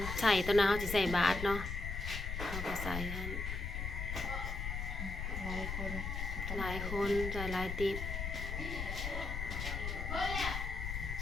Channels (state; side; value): noise; left; rumble, 4 dB below the sound